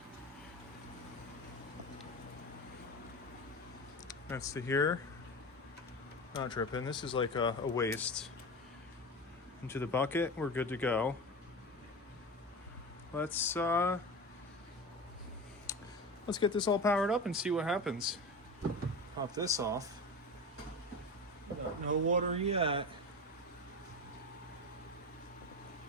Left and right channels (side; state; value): both; normal; correlation 0.27